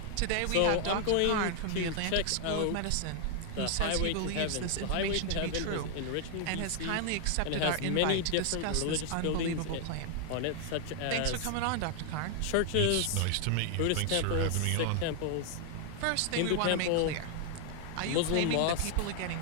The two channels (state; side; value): different; both; correlation 0.00